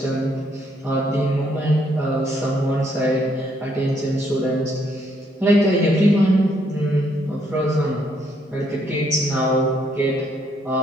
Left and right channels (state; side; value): normal; both; correlation 0.71